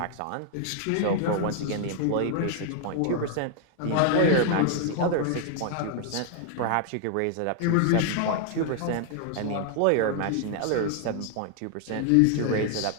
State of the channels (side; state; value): both; different; correlation 0.00